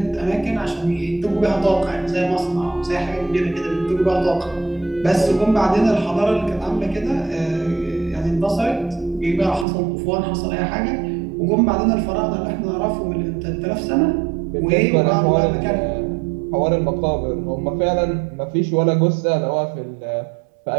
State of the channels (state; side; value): drops out; left; at 9.7 s